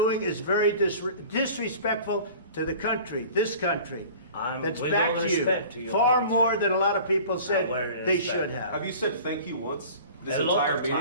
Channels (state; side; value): inverted; both; correlation -0.43